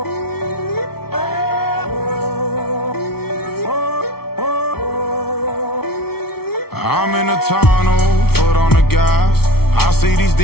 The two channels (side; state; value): right; late; 0.95 ms